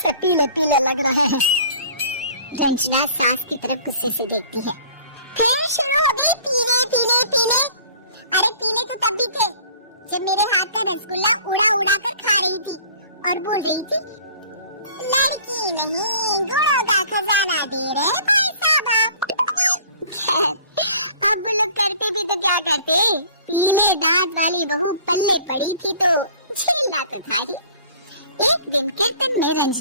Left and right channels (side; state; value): both; inverted; correlation -0.49